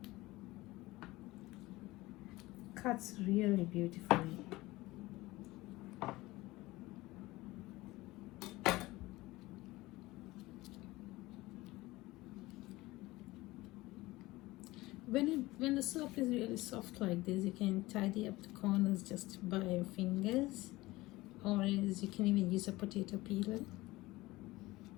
Cuts really beautifully. When the soap is really soft like this, you can tidy up the corners just by your fingers, or else you can even use a potato peeler.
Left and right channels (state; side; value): quieter; right; 19.5 dB